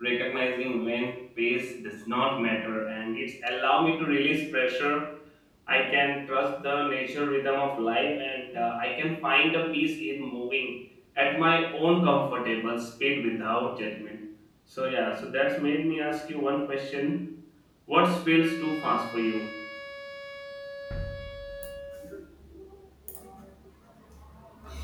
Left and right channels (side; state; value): both; identical; correlation 1.00